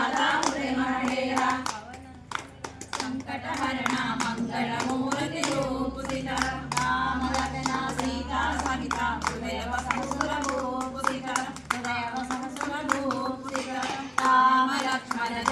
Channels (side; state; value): both; identical; correlation 1.00